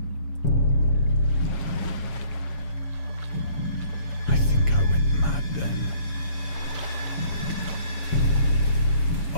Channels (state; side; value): late; right; 7.1 ms